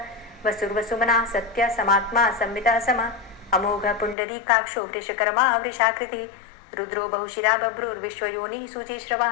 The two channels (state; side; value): drops out; right; at 4.2 s